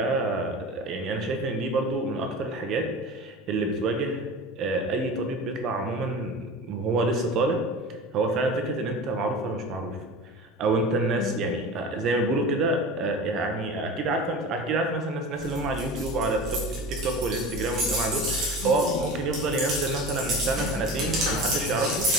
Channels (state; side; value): normal; both; correlation 0.34